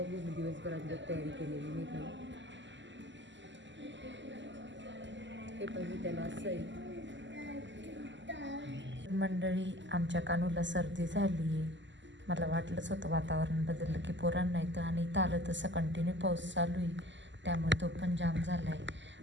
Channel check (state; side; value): late; left; 0.54 ms